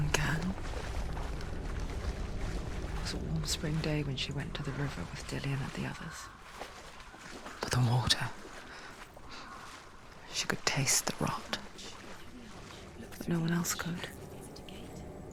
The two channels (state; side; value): identical; both; correlation 1.00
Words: can. It was a warm spring day when she went to the river with Dillian and the others. But the water... she could taste the rot. But no one else could.